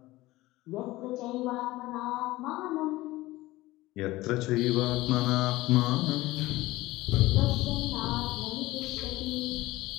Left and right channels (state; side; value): quieter; right; 18.4 dB